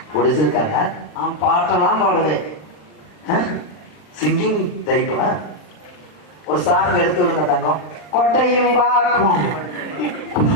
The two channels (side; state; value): right; late; 40 ms